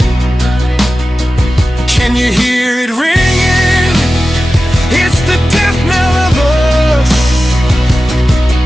Can you hear it ringing? It's the death knell of us.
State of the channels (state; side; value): normal; both; correlation 0.94